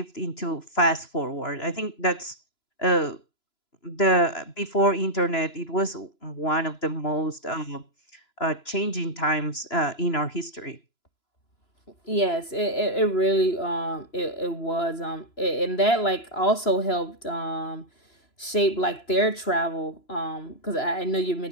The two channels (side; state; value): right; late; 2.9 ms